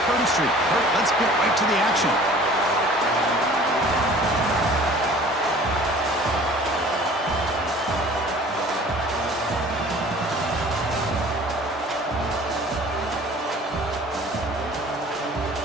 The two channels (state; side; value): normal; both; correlation 0.48